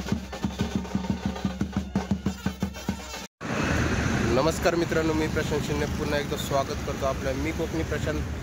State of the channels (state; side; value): identical; both; correlation 1.00